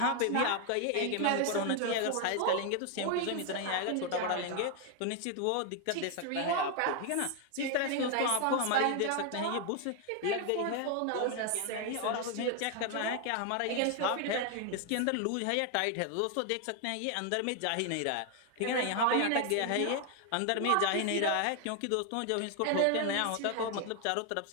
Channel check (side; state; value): both; different; correlation 0.01